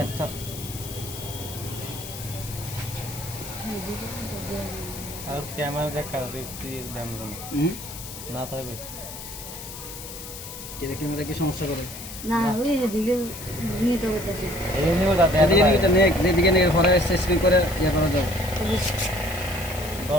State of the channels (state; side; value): noise; left; hiss, 11 dB below the sound